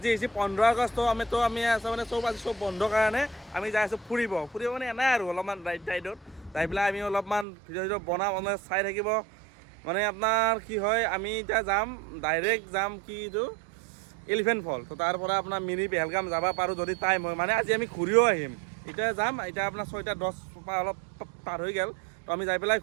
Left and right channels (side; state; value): left; drops out; at 7.5 s